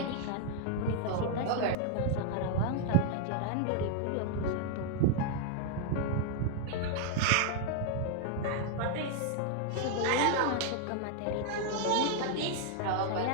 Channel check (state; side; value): different; both; correlation 0.00